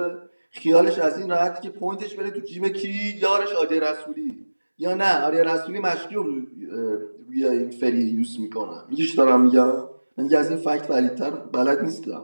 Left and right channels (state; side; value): inverted; both; correlation -1.00